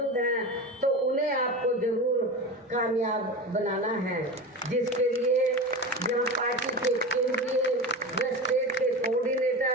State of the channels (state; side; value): normal; both; correlation 0.26